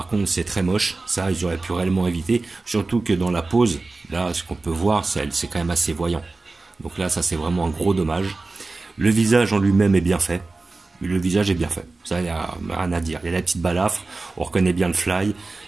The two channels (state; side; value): quieter; left; 3.5 dB